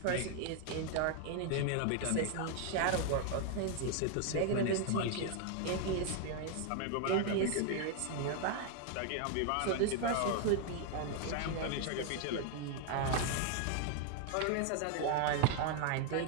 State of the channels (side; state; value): both; different; correlation 0.00